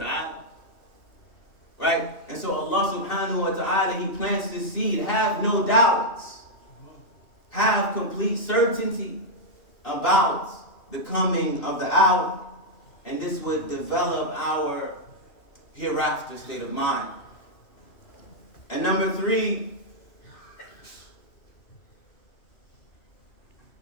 Right? And so Allah subhanahu wa ta'ala, He plants the seed. Have no doubts. Have complete certainty about the coming of the hour. And this would develop our hereafter state of mind. And number 3,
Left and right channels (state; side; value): late; right; 2.7 ms